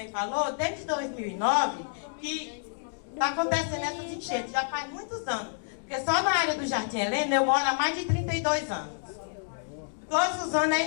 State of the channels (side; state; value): right; silent; digital silence